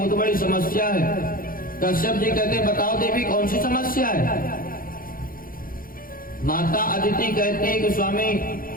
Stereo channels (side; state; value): right; late; 0.41 ms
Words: बड़ी समस्या है। कश्यप जी कहते, बताओ देवी, कौन सी समस्या है? माता अदिति कहती है कि स्वामी,